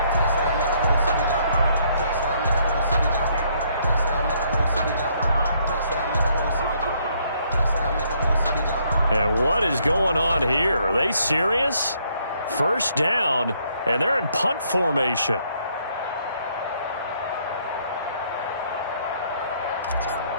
And what is going on here? Are they serious? First down, and they're in punt formation.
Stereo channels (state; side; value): inverted; both; correlation -0.69